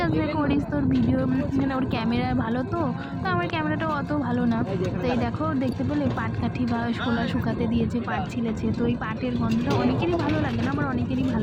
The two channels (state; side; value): identical; both; correlation 1.00